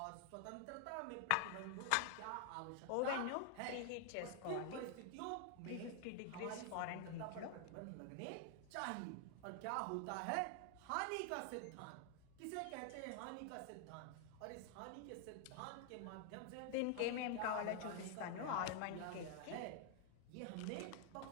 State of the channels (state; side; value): different; both; correlation 0.00